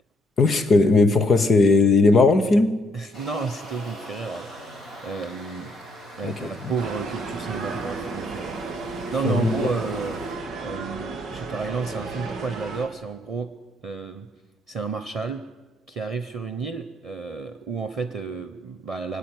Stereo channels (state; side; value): normal; both; correlation 0.71